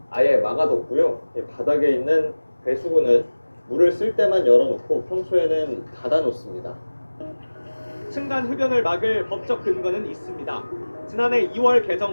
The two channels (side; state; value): both; inverted; correlation -1.00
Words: 아예 막아뒀고요. 바닥에 있는 배수구는 물을 쓸 때만 열어놓고 평소에는 닫아놓습니다. 층간 흡연을 막을 법적 근거는 있습니다. 지난해 2월